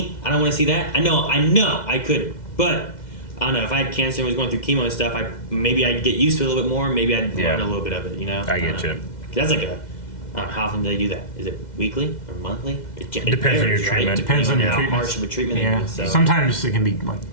I don't want to see that. I know I could. But, I don't know, if I had cancer and was going through chemo and stuff, maybe I'd get used to it a little bit more. Maybe I'd learn a little bit of it, you know? I get you. That's like I don't know, how often do they do that? Is it weekly or monthly? It Depends on your varies, right? treatment. Depends on your how treatment. harsh of a treatment Yeah. it is. So. Sometimes it can be like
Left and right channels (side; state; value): right; late; 2.1 ms